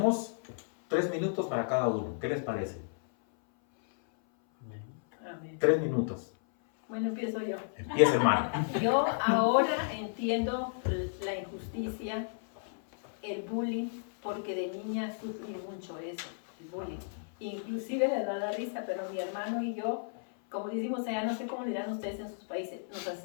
3 minutos para cada uno. ¿Qué les parece? Amén. 3 minutos. Bueno, empiezo yo. Empieza, hermano. Yo ahora entiendo la injusticia, el bullying, porque de niña sufrí mucho eso, el bullying. Inclusive les da la risa, pero mi hermano y yo, como decimos allá, no sé cómo dirán ustedes en sus países, nos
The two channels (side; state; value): right; silent; 56 dB below the other